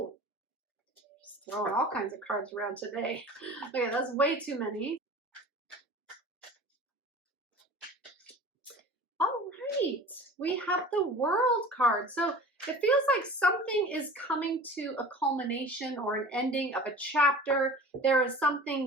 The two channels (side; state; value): both; normal; correlation 0.40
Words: throwing all kinds of cards around today. Okay, that's way too many. All right, we have the World card. So it feels like something is coming to a culmination or an ending of a chapter. There is